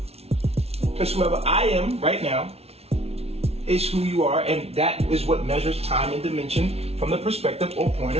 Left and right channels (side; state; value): left; late; 0.30 ms